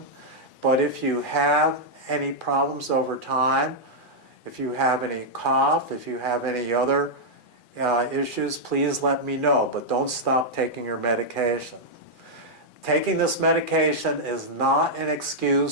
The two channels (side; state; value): right; late; 2.4 ms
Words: but if you have any problems over time, if you have any cough, if you have any other issues, please let me know, but don't stop taking your medication. Taking this medication is not an